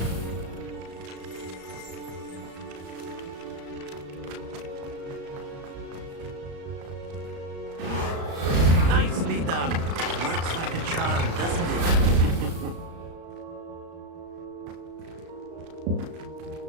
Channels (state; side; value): late; left; 35 ms